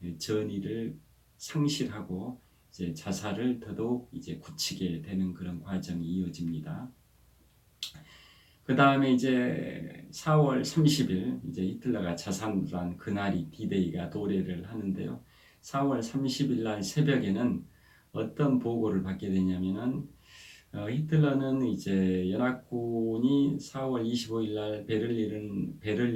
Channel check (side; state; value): both; identical; correlation 1.00